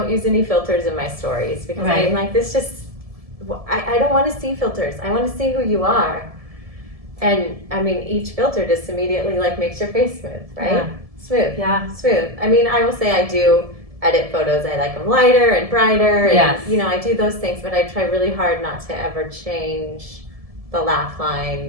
use any filters in my stories, because I'm like, this just, I don't want to see filters. I want to see who you are. And I mean, each filter just immediately like makes your face smooth, right? Yeah. Smooth. Yeah. Smooth. I mean, I will say I do edit photos. I like them lighter and brighter, and you know, I do those things, but I try really hard not to ever change the laugh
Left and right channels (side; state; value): left; late; 1.7 ms